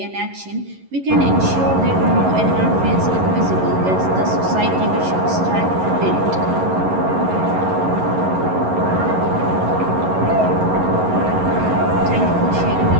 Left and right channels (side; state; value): left; late; 11 ms